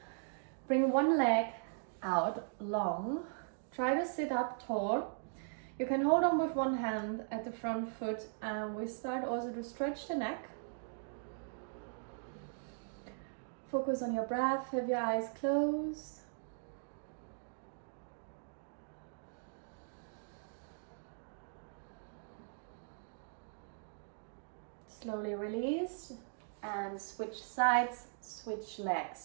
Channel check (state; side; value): silent; left; digital silence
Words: bring one leg out long. Try to sit up tall. You can hold on with one hand at the front foot, and we start also to stretch the neck. Focus on your breath. Have your eyes closed. Slowly release and switch sides, switch